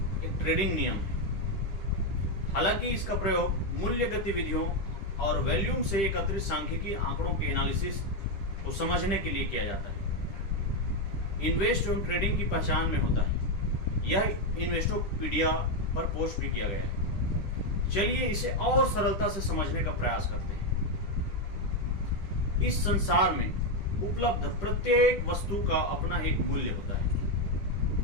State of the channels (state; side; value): late; right; 10 ms